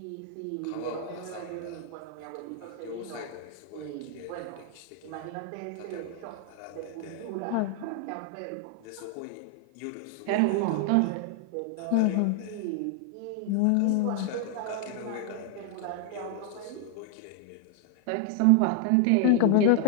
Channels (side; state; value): both; different; correlation 0.00